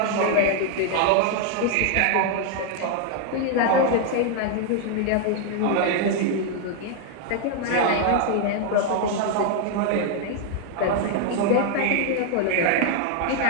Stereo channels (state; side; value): different; both; correlation 0.00